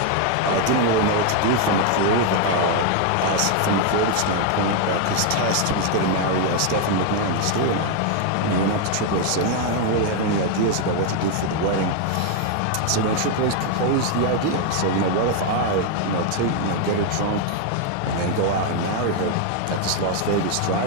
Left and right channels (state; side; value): different; both; correlation 0.01